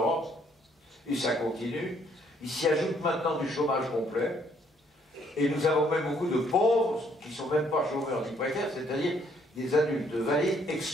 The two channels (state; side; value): normal; both; correlation 0.67